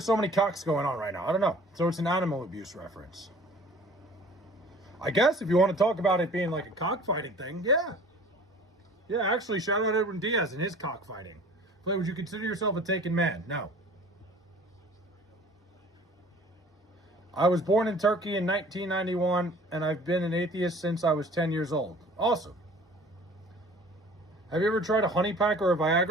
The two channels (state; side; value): normal; both; correlation 0.48